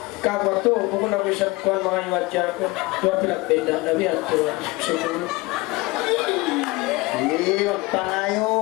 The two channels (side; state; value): right; quieter; 22.3 dB